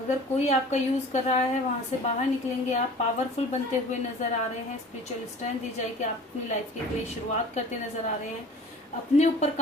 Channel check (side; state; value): both; normal; correlation 0.45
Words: कोई आपका यूज कर रहा है वहां से बाहर निकलेंगे आप, पावरफुल बनते हुए नजर आ रहे हैं, स्पिरिचुअल स्ट्रेंथ दी जाएगी, आप अपनी लाइफ की नई शुरुआत करते नजर आ रहे हैं, अपने ऊपर